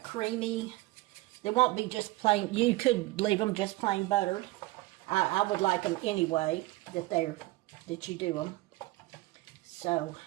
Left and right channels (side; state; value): left; quieter; 19.9 dB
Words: creamy. They won't be just plain. You could leave them just plain buttered. I would like them anyway that you do them. So